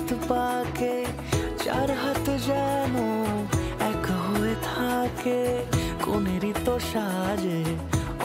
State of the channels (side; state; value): both; identical; correlation 1.00